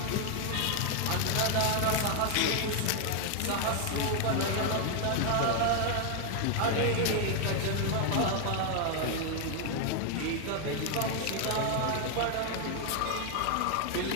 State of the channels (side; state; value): both; different; correlation 0.00